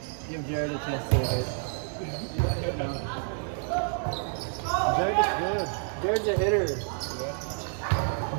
Jared a chance to hit. Jared is good. Jared's a hitter.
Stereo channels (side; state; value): left; silent; 59 dB below the other